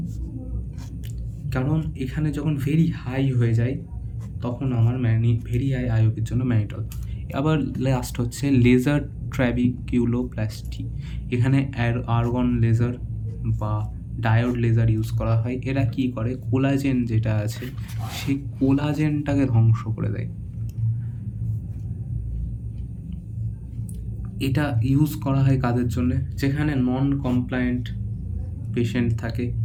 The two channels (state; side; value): identical; both; correlation 1.00